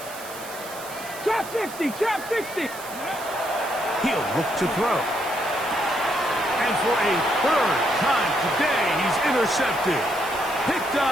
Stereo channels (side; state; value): right; noise; hiss, 14 dB below the sound